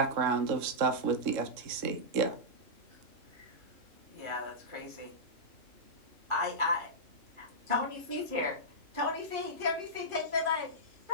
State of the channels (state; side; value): late; left; 3.6 ms